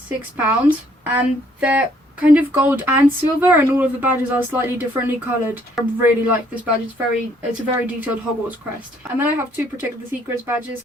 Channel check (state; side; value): normal; both; correlation 0.65